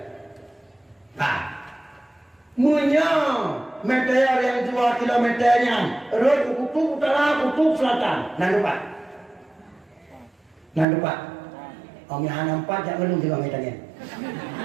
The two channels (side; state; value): left; drops out; at 10.9 s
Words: Munya meteor yang 2 kilometernya, road kutub utara, kutub selatan. Nan depan. Om yang nampak jangan ngelung juga ngetanya.